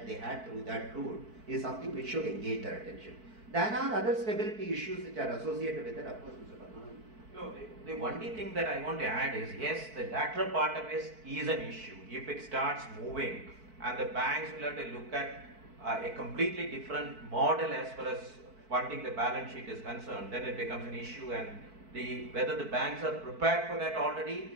they had through that route is something which should engage their attention. There are other stability issues which are associated with it, of course, Mr. Padmanabhan. No, the only thing that I want to add is, yes, the lateral part of it is an issue. If it starts moving and the banks will have to look at a completely different model as far as funding the balance sheet is concerned, then it becomes an issue, and whether the banks are prepared for that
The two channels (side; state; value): left; late; 4.5 ms